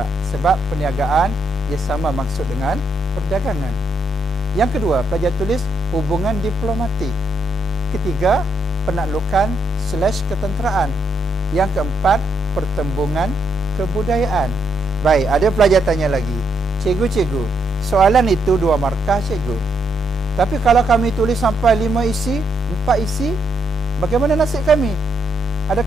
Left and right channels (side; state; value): both; normal; correlation 0.76